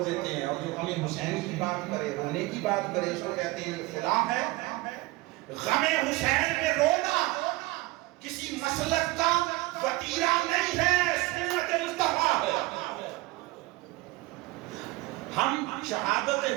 دیتے ہیں، اور جو غم حسین کی بات کرے، رونے کی بات کرے، اس کو کہتے ہیں فلاں ہے۔ غم حسین میں رونا کسی مسلک کا وتیرہ نہیں ہے، سنت مصطفیٰ ہے۔ ہم شہادت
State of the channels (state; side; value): quieter; left; 20.8 dB